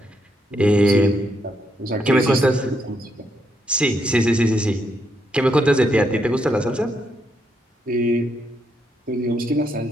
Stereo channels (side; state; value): both; normal; correlation 0.78